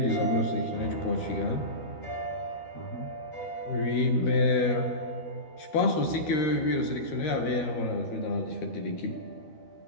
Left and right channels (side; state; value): right; late; 12 ms